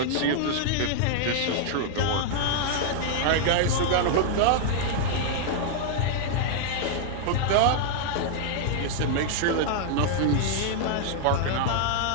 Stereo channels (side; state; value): both; different; correlation 0.00